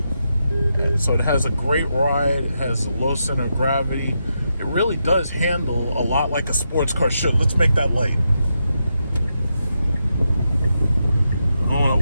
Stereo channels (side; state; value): both; inverted; correlation -0.84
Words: And so it has a great ride. It has a low center of gravity. It really does handle a lot like a sports car should. Let's make that light.